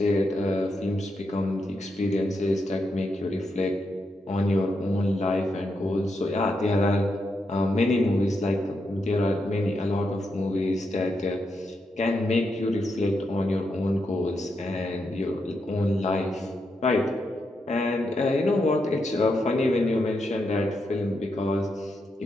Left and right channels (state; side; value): normal; both; correlation 0.83